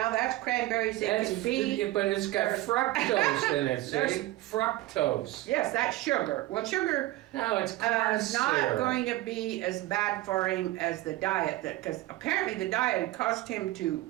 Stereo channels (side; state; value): left; quieter; 17.4 dB